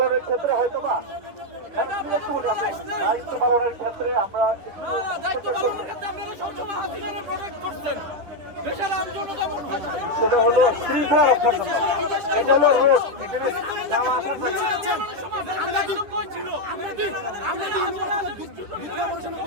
ক্ষেত্রে হয়তো বা দায়িত্ব পালনের ক্ষেত্রে আমরা সেটা হলো শৃঙ্খলা রক্ষার জন্য এটা হলো রোড এখানে যাওয়া আসার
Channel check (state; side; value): late; left; 10 ms